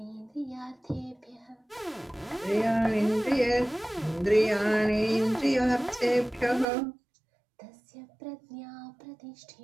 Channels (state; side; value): drops out; left; at 6.7 s